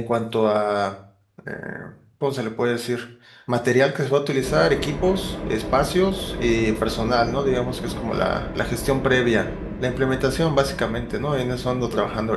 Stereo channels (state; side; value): identical; both; correlation 1.00